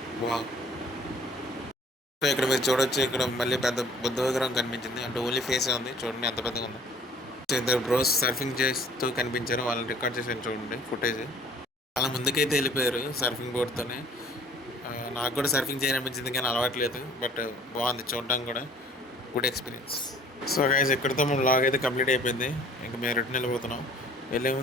wow. So ఇక్కడ మీరు చూడొచ్చు, ఇక్కడ మళ్ళీ పెద్ద బుద్ధ విగ్రహం కనిపించింది, అంటే ఓన్లీ ఫేస్ ఉంది చూడండి ఎంత పెద్దగా ఉంది. సో ఇద్దరు బ్రోస్ సర్ఫింగ్ చేస్తూ కనిపించారు, వాళ్ళని రికార్డ్ చేసాను చూడండి ఫుటేజ్. చాలా ముందుకైతే వెళ్ళిపోయారు సర్ఫింగ్ బోర్డ్తోనే. నాకు కూడా సర్ఫింగ్ చేయాలనిపించింది కానీ అలవాట్లేదు, బట్ బాగుంది చూడడానికి కూడా, గుడ్ ఎక్స్పీరియన్స్. సో గైస్ ఇక్కడితో మన వ్లాగ్ అయితే కంప్లీట్ అయిపోయింది. ఇంకా మేము రిటర్న్ వెళ్ళిపోతున్నాం. వెళ్ళే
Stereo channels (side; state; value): both; normal; correlation 0.52